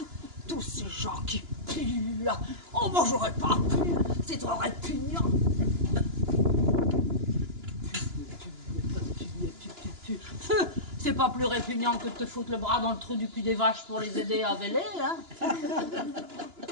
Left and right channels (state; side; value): late; left; 2.9 ms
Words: Tous ces gens qui puent là, oh moi j'aurais pas pu, c'est trop répugnant. » C'est pas plus répugnant que de te foutre le bras dans le trou du cul des vaches pour les aider à véler, hein?